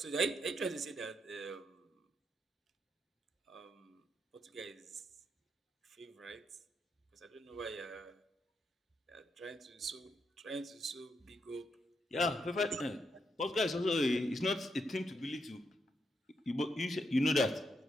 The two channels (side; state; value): both; normal; correlation 0.80